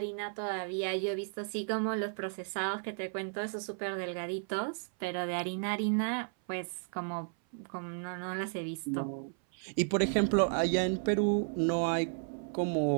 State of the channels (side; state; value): left; silent; 55 dB below the other